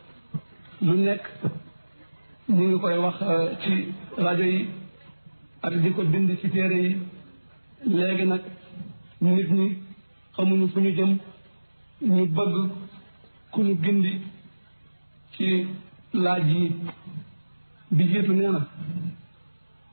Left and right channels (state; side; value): inverted; both; correlation -1.00